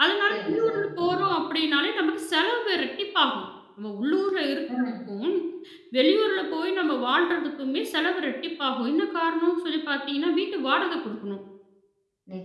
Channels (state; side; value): identical; both; correlation 1.00